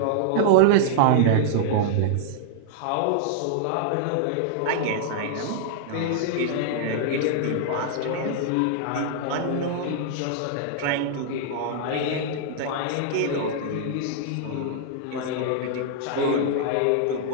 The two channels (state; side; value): different; both; correlation -0.01